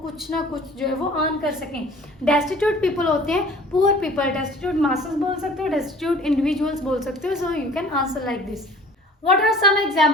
कुछ ना कुछ जो है वो अर्न कर सकें। डेस्टिट्यूट पीपल होते हैं पुअर पीपल, डेस्टिट्यूट मासेस बोल सकते हो, डेस्टिट्यूट इंडिविजुअल्स बोल सकते हो। सो you can answer like this. What are some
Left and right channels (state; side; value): normal; both; correlation 0.48